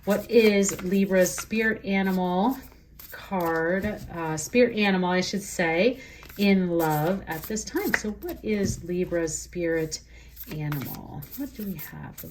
what is Libra's spirit animal card? Spirit animal, I should say, in love at this time. So what is Libra's spirit animal? What do we have for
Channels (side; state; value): both; identical; correlation 1.00